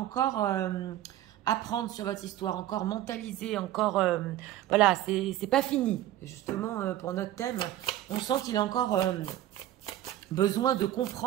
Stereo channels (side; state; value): left; quieter; 13.4 dB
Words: apprendre sur votre histoire, encore mentaliser, encore... voilà, c'est pas fini. Justement, pour notre thème, on sent qu'il a encore besoin de